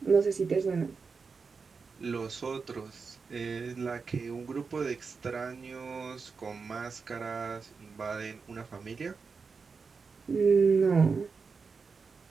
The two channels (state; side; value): quieter; left; 5.0 dB